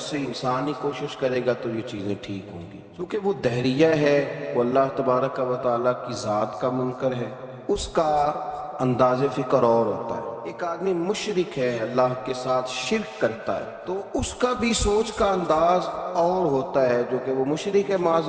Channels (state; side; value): identical; both; correlation 1.00